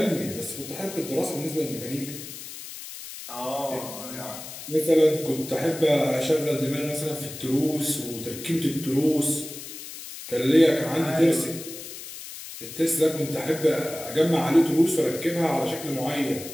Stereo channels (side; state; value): left; noise; hiss, 12 dB below the sound